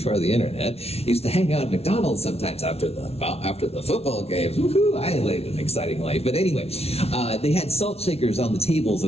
the internet, used to hang out at McDonald's sometimes after the football games. Woohoo! I lived an exciting life. But anyway, they had salt shakers on the tables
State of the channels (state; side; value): late; right; 0.30 ms